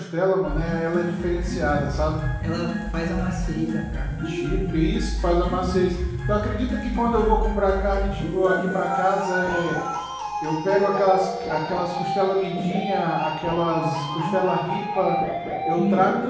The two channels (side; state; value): both; identical; correlation 1.00